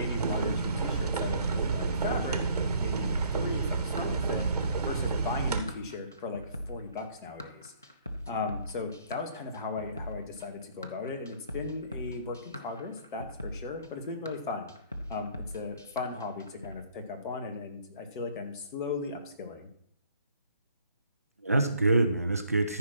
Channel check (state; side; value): inverted; both; correlation -0.61